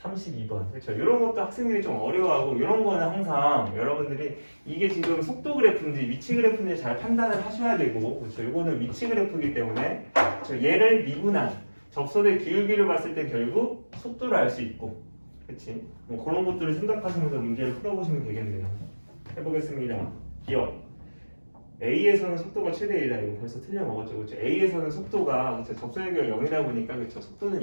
그렇죠? 이런 것도 학생들이 좀 어려워하고 이런 거는 항상 여러분들이 이게 지금 속도 그래프인지 위치 그래프인지 잘 판단을 하셔야 되고 그렇죠? 이거는 위치 그래프이기 때문에 그렇죠? 얘를 미분한 접선의 기울기를 봤을 때 결국 속도를 알 수 있고 그렇지? 뭐 그런 것들을 생각하시면서 문제를 풀어보시면 되겠네요. 해보겠습니다. 기억 A에서는 속도가 최대 1이다. 이거 벌써 틀려먹었죠. 그렇죠? A에서는 속도가 그렇죠? 접선의 기울기가 0이다 보니까 그렇죠? 속도는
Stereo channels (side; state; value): both; inverted; correlation -1.00